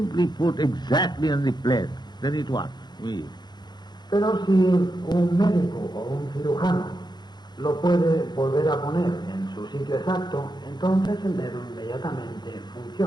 put exactly on the place. Then it works. Pero si un médico o un cirujano lo puede volver a poner en su sitio exacto, entonces el dedo inmediatamente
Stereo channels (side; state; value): right; late; 0.21 ms